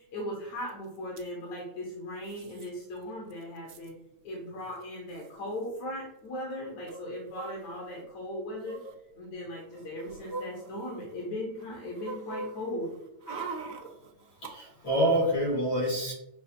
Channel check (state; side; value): late; right; 9.1 ms